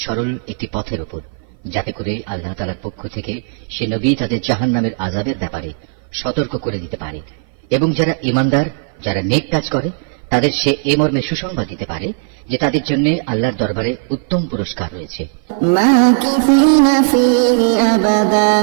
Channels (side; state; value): left; silent; 57 dB below the other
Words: সরল একটি পথের উপর, যাতে করে আল্লাহ তাআলার পক্ষ থেকে সে নবী তাদের জাহান্নামের আযাবের ব্যাপারে সতর্ক করে দিতে পারে এবং যারা ঈমানদার, যারা নেক কাজ করে তাদের সে এ মর্মে সুসংবাদ দিতে পারে যে তাদের জন্য আল্লাহর দরবারে উত্তম পুরস্কার রয়েছে, ماكثين فيه أبدا